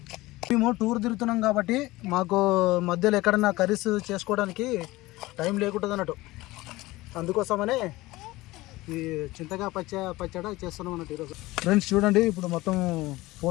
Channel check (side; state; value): right; quieter; 19.3 dB